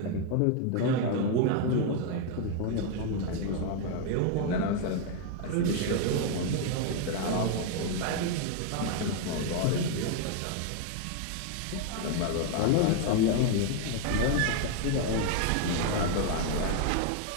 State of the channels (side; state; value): both; different; correlation 0.01